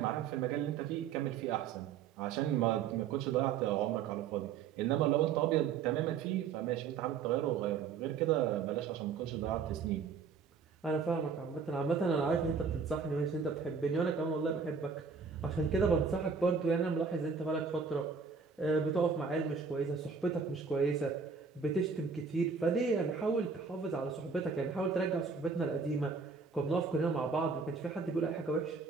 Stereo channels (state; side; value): quieter; left; 5.7 dB